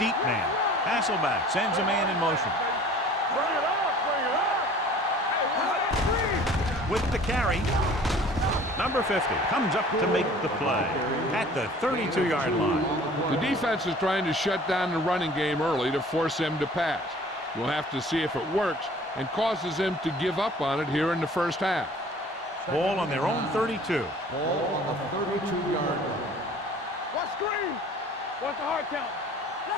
man. Hasselback sends a man in motion. Bring it up, bring it up. Hey, With the carry, number 50 comes up to make the play at the 32-yard line. The defense is trying to shut down the running game early to force him to pass. We'll have to see if it works and causes him to give up on it here in the first half. Ball on their own 32. Ball on the 32-yard line. What screen? What's the hard count?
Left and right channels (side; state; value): both; normal; correlation 0.49